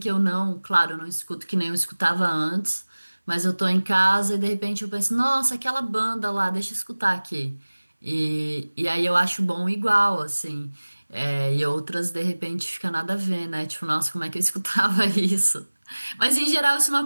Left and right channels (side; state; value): both; inverted; correlation -1.00